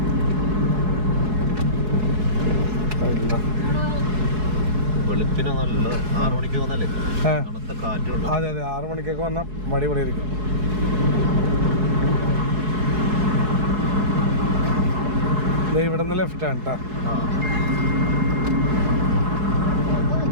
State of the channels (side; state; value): left; late; 4.7 ms